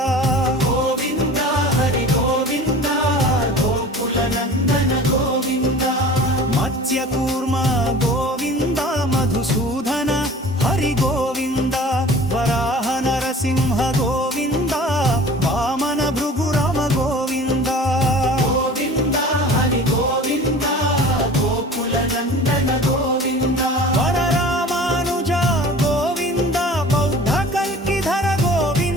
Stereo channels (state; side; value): normal; both; correlation 0.42